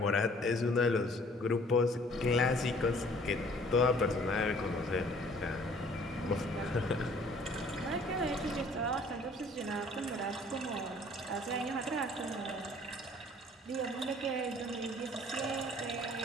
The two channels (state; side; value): normal; both; correlation 0.55